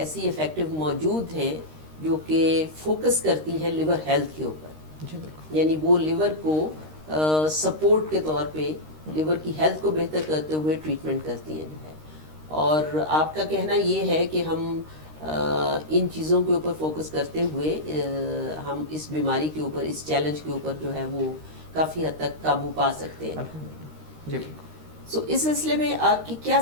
افیکٹو موجود ہیں جو کہ فوکس کرتی ہیں لیور ہیلتھ کے اوپر. جی بالکل, یعنی وہ لیور کو سپورٹ کے طور پہ لیور کی ہیلتھ کو بہتر کرتے ہوئے ٹریٹمنٹ کرتی ہیں جو ہے. اور آپ کا کہنا یہ ہے کہ ہم ان چیزوں کے اوپر فوکس کرتے ہوئے ہم اس بیماری کے اوپر, اس چیلنج کے اوپر جو ہے وہ کافی حد تک قابو پا سکتے ہیں. الحمدللہ. جی بالکل. سو اس سلسلے میں آپ کی کیا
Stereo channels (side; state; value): left; late; 13 ms